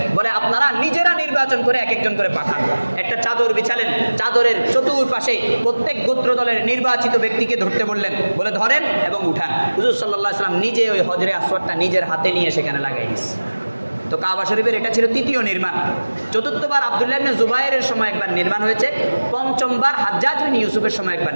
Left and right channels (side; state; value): both; inverted; correlation -1.00